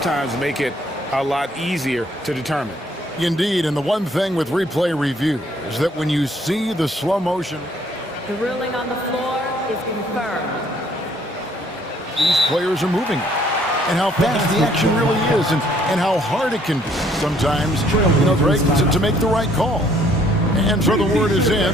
make it a lot easier to determine. Indeed, and the one thing with replay review is that when you see the slow motion, The ruling on the floor is confirmed. these players are moving, and how fast the action really is, and how hard it can be sometimes, Greg, to make the right call. And so the word is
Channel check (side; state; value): both; normal; correlation 0.63